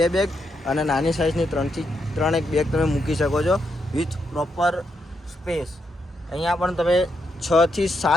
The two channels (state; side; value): normal; both; correlation 0.80